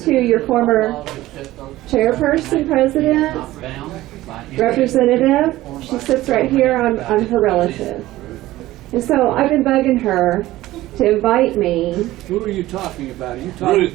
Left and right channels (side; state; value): left; quieter; 16.5 dB